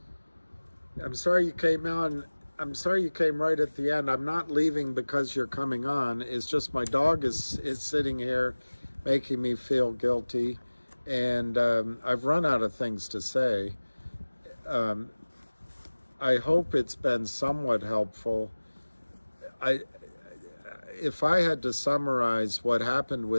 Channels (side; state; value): both; inverted; correlation -1.00